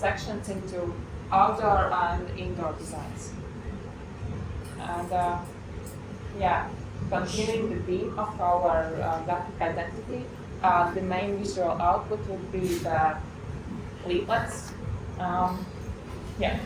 into outdoor and indoor designs. And continuing the theme of our graphic identity, the main visual output would be the leaflets.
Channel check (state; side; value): identical; both; correlation 1.00